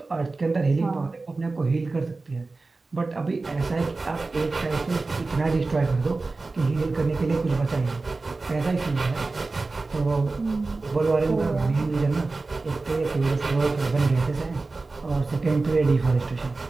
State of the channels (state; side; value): quieter; left; 3.6 dB